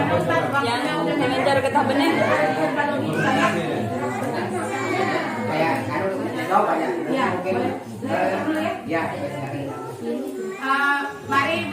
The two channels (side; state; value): both; identical; correlation 1.00